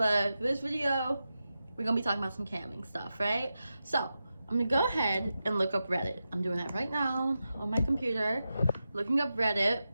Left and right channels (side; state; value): both; inverted; correlation -0.91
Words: for this video, we're gonna be talking about some camming stuff, right? So I'm gonna go ahead and look up Reddit. I'm doing that right now on my computer, looking up Reddit.